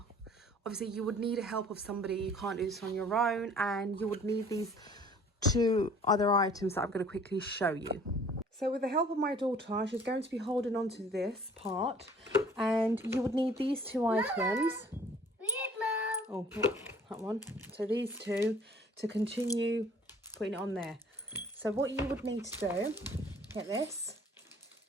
Obviously you would need a help of somebody, you can't do this on your own, and you would need these two other items that I'm going to quickly show you. So with the help of my daughter, she's going to be holding on to this part, and you would need these two items. Oh, that one. So these two to continue putting it on there. So what you would need to do, get this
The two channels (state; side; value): normal; both; correlation 0.53